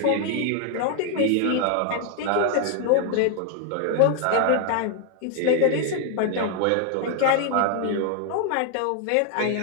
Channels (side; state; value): both; different; correlation 0.00